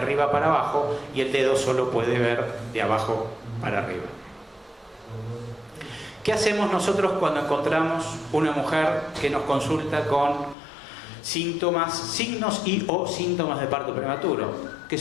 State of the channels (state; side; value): drops out; right; at 10.6 s